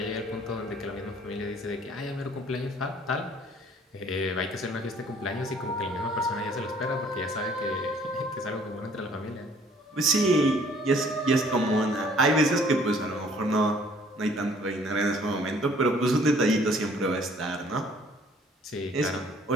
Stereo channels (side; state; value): both; normal; correlation 0.57